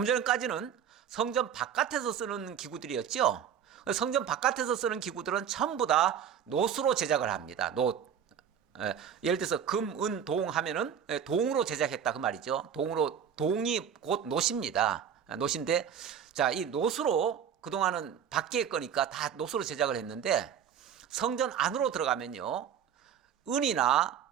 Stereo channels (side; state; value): left; quieter; 8.4 dB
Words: 전까지는 성전 바깥에서 쓰는 기구들이었죠. 성전 바깥에서 쓰는 기구들은 전부 다 놋으로 제작을 합니다. 놋. 예를 들어서 금, 은, 동 하면은 동으로 제작했다 그 말이죠. 동이 곧 놋입니다. 놋인데 자, 이 놋으로 그동안은 밖에 거니까 다 놋으로 제작을 했는데 성전 안으로 들어가면요. 은이나